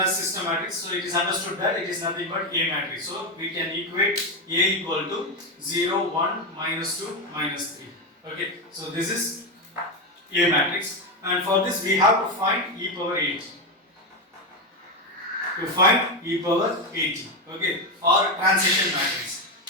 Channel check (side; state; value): both; normal; correlation 0.10